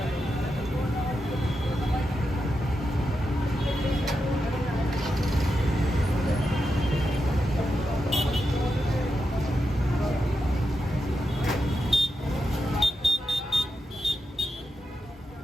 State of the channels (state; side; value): normal; both; correlation 0.87